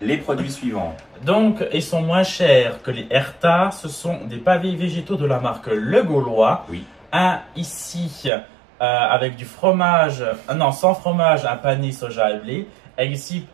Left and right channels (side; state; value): left; drops out; at 8.3 s